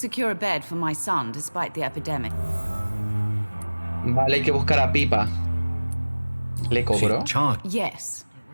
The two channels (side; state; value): both; inverted; correlation -1.00